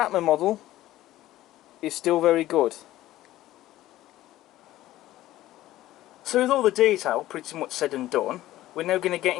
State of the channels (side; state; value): right; quieter; 15.1 dB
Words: model is still very good. So with all the detail pretty much said and done, we're now going to get